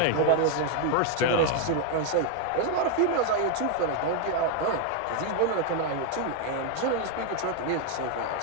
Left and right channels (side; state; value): both; different; correlation 0.00